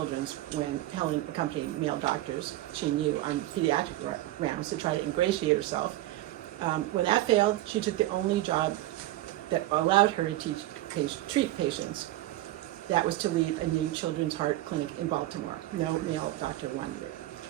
when Helen accompanied male doctors she knew on pediatric rounds to try to ingratiate herself. When that failed, she took the only job that allowed her to treat patients. That was to lead a new children's heart clinic in Baltimore. No male doctor wanted it.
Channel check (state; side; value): quieter; left; 16.0 dB